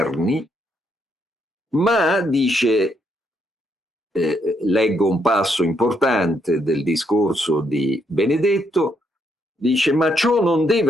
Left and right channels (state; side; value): normal; both; correlation 0.75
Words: ma dice, leggo un passo importante del discorso di Benedetto, dice: ma ciò non